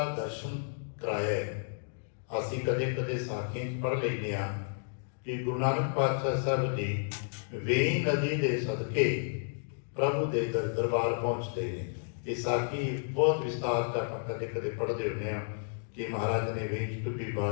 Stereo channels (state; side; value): silent; right; digital silence